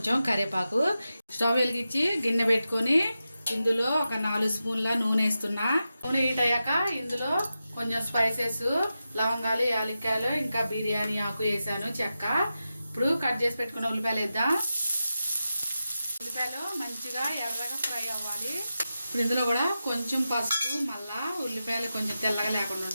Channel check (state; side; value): inverted; both; correlation -0.91